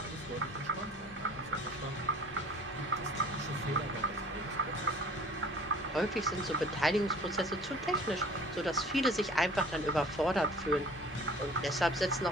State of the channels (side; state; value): both; normal; correlation 0.48